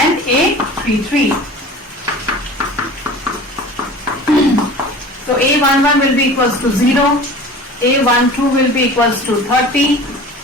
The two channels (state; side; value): normal; both; correlation 0.40